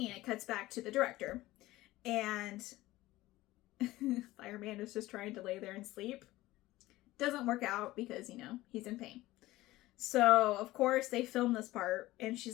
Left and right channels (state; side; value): quieter; right; 17.5 dB